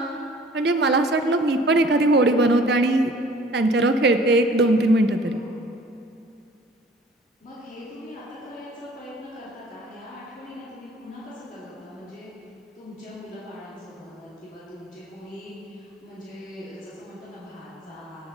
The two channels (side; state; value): both; normal; correlation 0.51